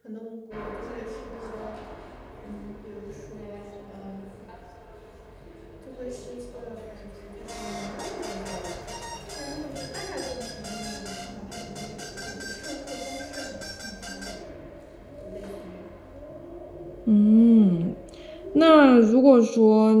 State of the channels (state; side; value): identical; both; correlation 1.00